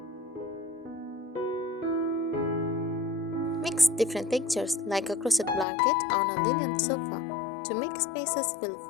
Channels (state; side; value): drops out; right; at 5.7 s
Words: Mix different textures like a crochet blanket on a linen sofa to make spaces feel